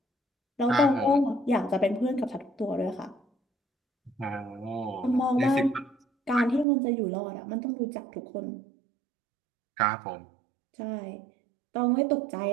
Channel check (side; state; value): left; drops out; at 6.7 s